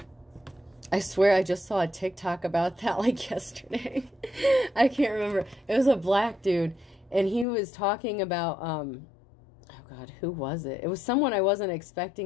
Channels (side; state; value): right; drops out; at 7.5 s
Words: I swear I just saw a TikTok about that like yesterday. I can't remember. It was a black dude, and he was talking about, oh God, who was it? It was someone I wasn't